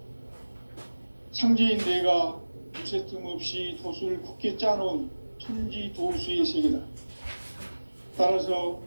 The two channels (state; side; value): inverted; both; correlation -1.00